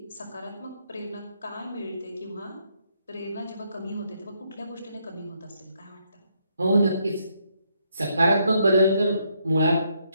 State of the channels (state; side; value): inverted; both; correlation -0.74